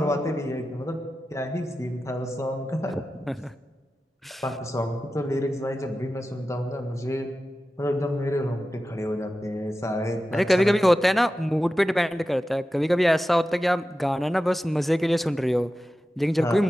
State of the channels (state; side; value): normal; both; correlation 0.93